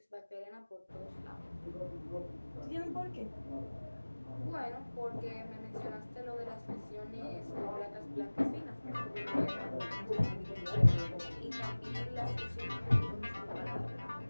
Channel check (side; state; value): both; inverted; correlation -1.00